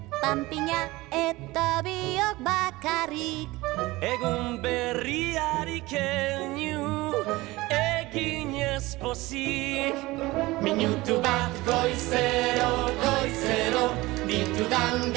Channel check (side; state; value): left; quieter; 20.2 dB